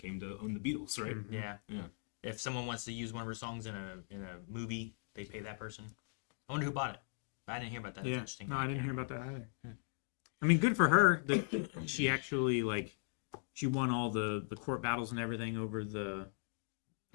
to own the Beatles, right? Mhm. Yeah. Yeah. If someone wants to use one of her songs in a movie, they pay that person. I wonder who bought it. I didn't hear about that. That's Yeah. interesting. No, I didn't hear about that either. Hmm. I mean, good for her that she actually like she won all the court battles and everything over the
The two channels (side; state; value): right; silent; 52 dB below the other